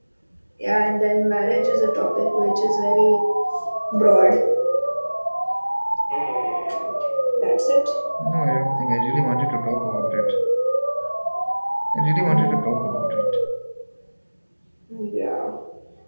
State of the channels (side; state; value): both; inverted; correlation -1.00